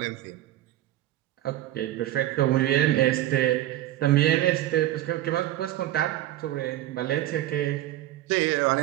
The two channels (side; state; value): left; quieter; 14.1 dB